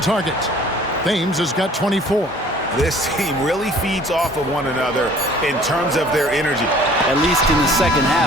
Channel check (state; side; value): normal; both; correlation 0.52